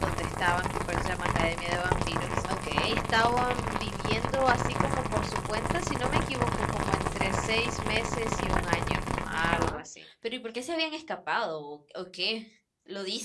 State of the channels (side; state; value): both; identical; correlation 1.00